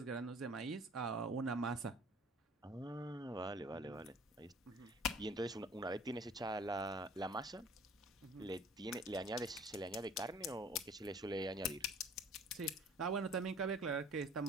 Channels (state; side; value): normal; both; correlation 0.50